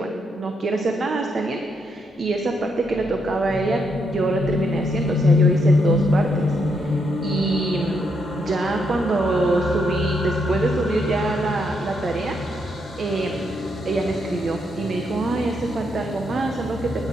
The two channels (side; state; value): both; normal; correlation 0.78